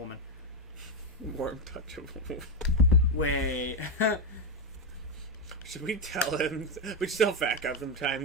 Warm touch of a woman. Wait. Should we tell him? We should tell Fat Guy sometime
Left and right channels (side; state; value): both; normal; correlation 0.08